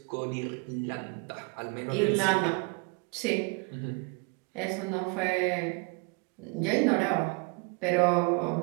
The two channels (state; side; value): quieter; left; 32.0 dB